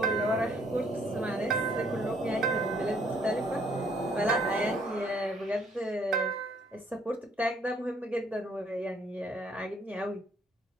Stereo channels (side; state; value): both; normal; correlation 0.65